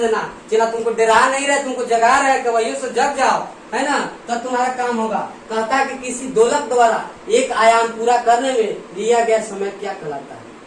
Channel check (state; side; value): identical; both; correlation 1.00